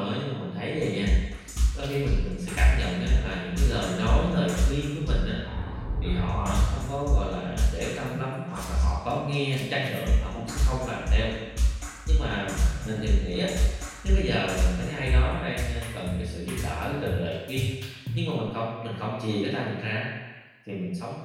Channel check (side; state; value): both; identical; correlation 1.00